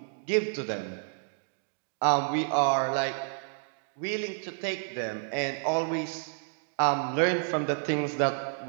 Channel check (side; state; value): left; silent; digital silence